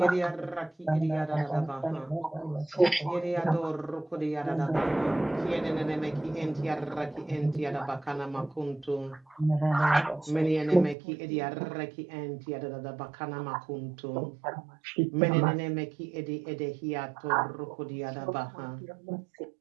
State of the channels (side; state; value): left; drops out; at 11.0 s